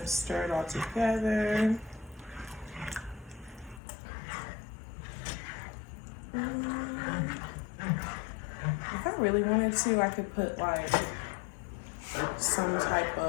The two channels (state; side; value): drops out; right; at 3.8 s